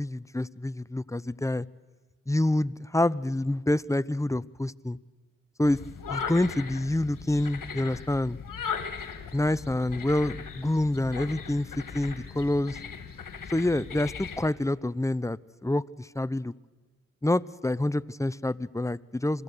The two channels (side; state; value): both; normal; correlation 0.91